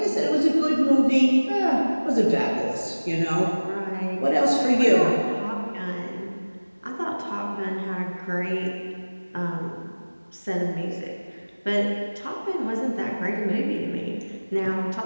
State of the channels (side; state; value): both; inverted; correlation -1.00